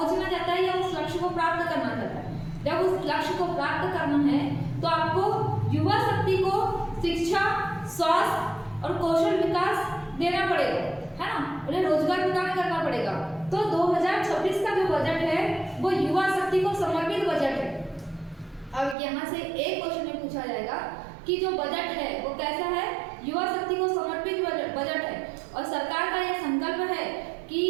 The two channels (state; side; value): drops out; left; at 18.9 s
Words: चाहता है या उस लक्ष्य को प्राप्त करना चाहता है। जब उस लक्ष्य को प्राप्त करना है तो आपको युवा शक्ति को शिक्षा, स्वास्थ्य और कौशल विकास देना पड़ेगा, है ना, उन्हें रोजगार प्रदान करना पड़ेगा। तो 2026 का जो बजट है वो युवा शक्ति को समर्पित बजट है। अब यहाँ से एक क्वेश्चन में पूछा जाएगा कि जो बजट है वो कैसा है, युवा शक्ति को समर्पित बजट है, और सरकार का यह संकल्प है